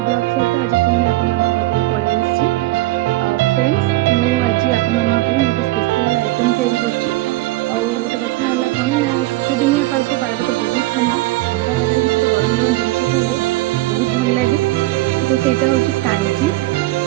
ବ୍ଲଗ୍ ସହିତ ଆଜି ପୁଣି ଆପଣମାନଙ୍କ ପାଖକୁ ପଳେଇ ଆସିଛି। ଫ୍ରେଣ୍ଡସ୍, ମୁଁ ଆଜି ଆପଣମାନଙ୍କ ପାଇଁ ଗୋଟେ ସ୍ପେଶାଲ୍ ଆଇଟମ୍ ତିଆରି କରିଛି। ଆଉ ଗୋଟେ କଥା ହେଲା କ'ଣ ନା, ଶୀତଦିନିଆ ପାଗଟା ବହୁତ ଥଣ୍ଡା ପାଗରେ କିଛି ଗରମ ଗରମ ଜିନିଷ ଖାଇଲେ ବହୁତ ଭଲ ଲାଗେ। ତ ସେଇଟା ହେଉଛି କାଞ୍ଜି,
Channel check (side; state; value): left; quieter; 18.8 dB